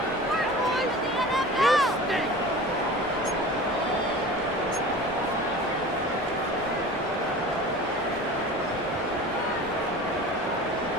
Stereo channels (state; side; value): normal; both; correlation 0.38